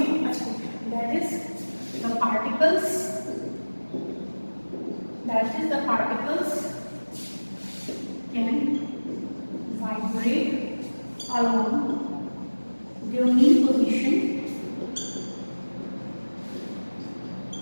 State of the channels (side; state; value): both; inverted; correlation -1.00